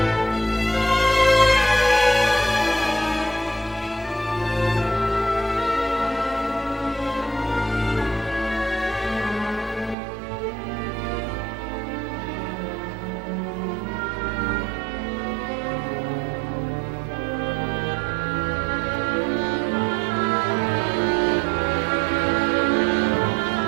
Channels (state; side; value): drops out; left; at 10.0 s